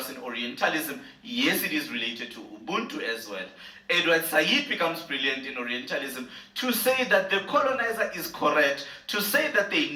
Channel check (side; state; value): both; identical; correlation 1.00